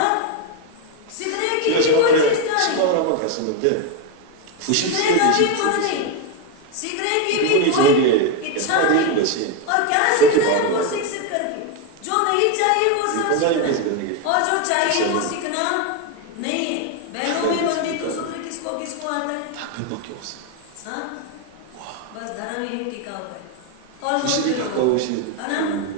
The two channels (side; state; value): both; different; correlation 0.02